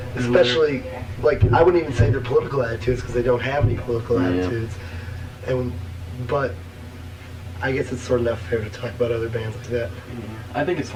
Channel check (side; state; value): both; identical; correlation 1.00